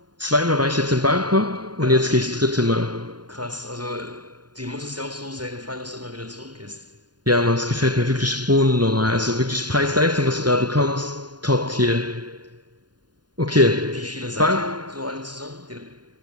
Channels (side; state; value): left; late; 0.70 ms